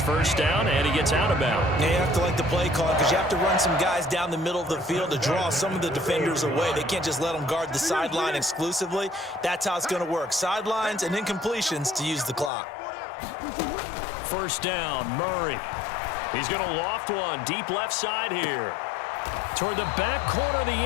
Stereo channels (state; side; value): drops out; right; at 12.5 s